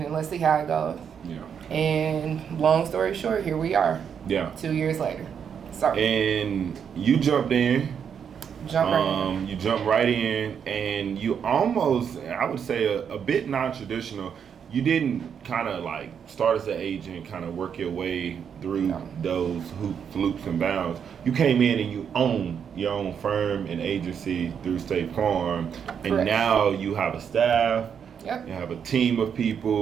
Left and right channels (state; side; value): quieter; left; 7.5 dB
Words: and let's see how it goes. Yeah. And long story short, here we are. Yeah. 2 years later. Sorry. And you jumped in. You jumped right in, and you almost, I would say, a bit non-traditional. You didn't kind of like start as an agent, kind of work your way through those hoops, loops, and bounds. You came in and you own your own firm and agency through State Farm, and now you have a staff. Yep. You have a team of